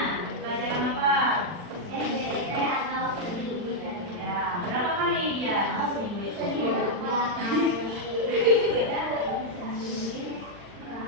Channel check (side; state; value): left; late; 40 ms